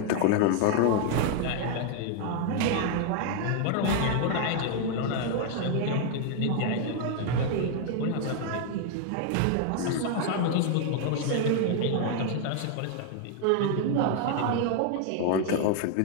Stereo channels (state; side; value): different; both; correlation 0.00